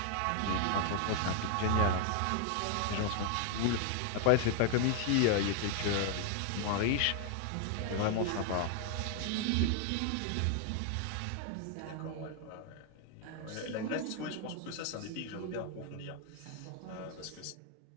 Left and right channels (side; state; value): both; different; correlation 0.00